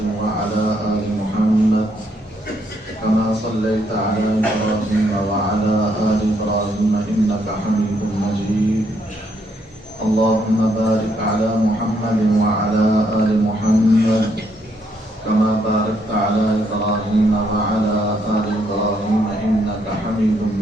وعلى آل محمد كما صليت على إبراهيم وعلى آل إبراهيم إنك حميد مجيد. اللهم بارك على محمد وعلى آل محمد كما باركت على إبراهيم وعلى آل إبراهيم إنك حميد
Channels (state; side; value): normal; both; correlation 0.73